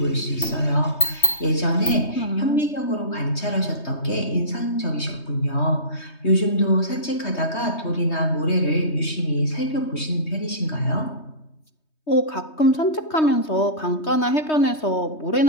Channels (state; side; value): late; right; 3.2 ms